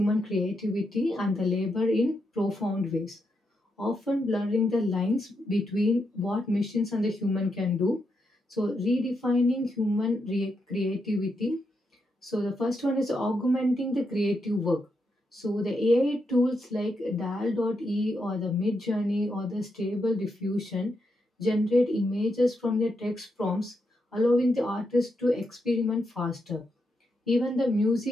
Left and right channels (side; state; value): both; normal; correlation 0.83